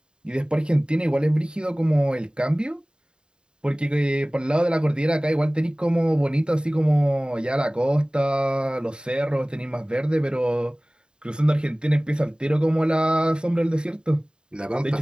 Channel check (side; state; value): left; late; 0.048 ms